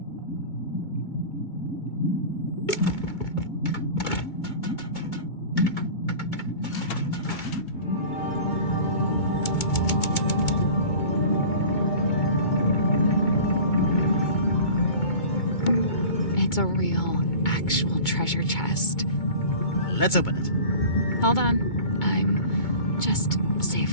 It's a real, actual treasure chest. Let's open it. Hold on. I'm just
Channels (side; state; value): right; late; 2.2 ms